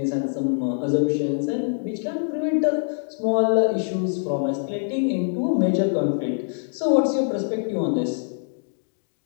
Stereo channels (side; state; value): right; silent; digital silence